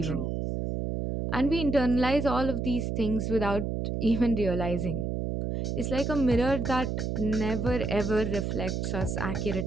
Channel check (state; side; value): noise; right; hum, 2 dB below the sound